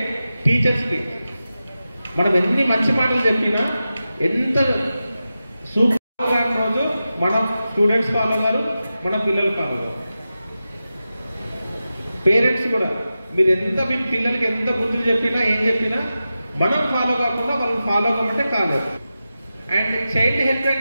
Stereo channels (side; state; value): both; inverted; correlation -0.93